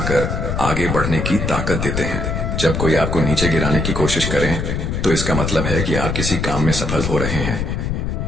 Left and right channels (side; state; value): left; noise; rumble, 2 dB below the sound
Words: आगे बढ़ने की ताकत देते हैं। जब कोई आपको नीचे गिराने की कोशिश करे तो इसका मतलब है कि आप किसी काम में सफल हो रहे हैं।